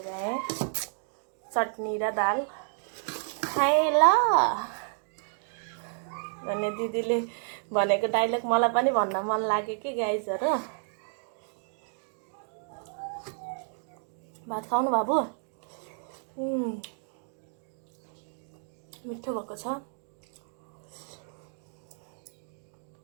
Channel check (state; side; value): silent; left; 57 dB below the other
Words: भ्याएँ। चटनी र दाल खाएँ ल भन्ने दिदीले भनेको डाइलग मलाई पनि भन्न मन लाग्यो कि गाइजहरु। भात खाउनु बाबु? मिठो भएको छ।